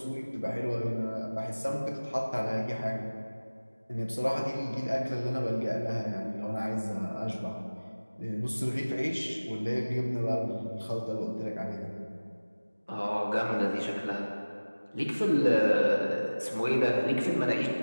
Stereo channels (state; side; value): inverted; both; correlation -1.00